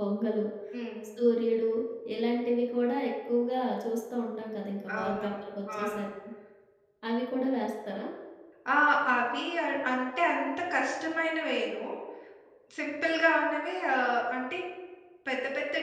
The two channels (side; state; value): both; identical; correlation 1.00